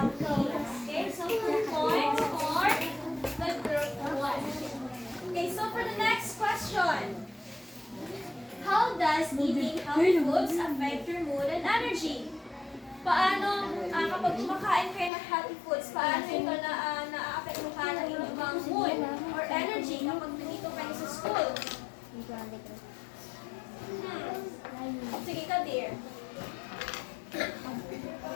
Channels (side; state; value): right; drops out; at 15.1 s